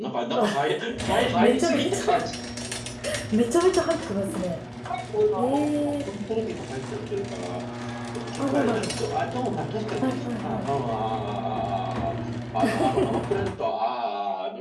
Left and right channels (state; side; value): identical; both; correlation 1.00